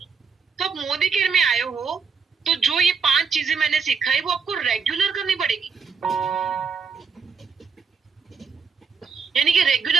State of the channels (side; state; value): left; quieter; 5.7 dB